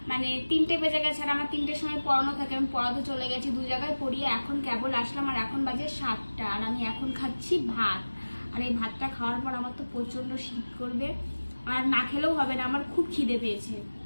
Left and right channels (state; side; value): inverted; both; correlation -1.00